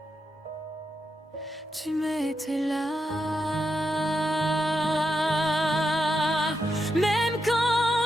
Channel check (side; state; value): both; normal; correlation 0.85